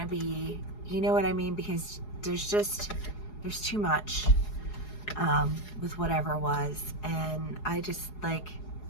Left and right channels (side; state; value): right; late; 4.8 ms